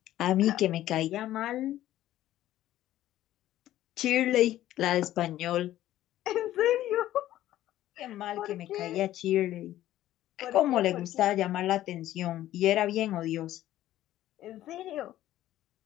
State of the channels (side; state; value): right; quieter; 13.7 dB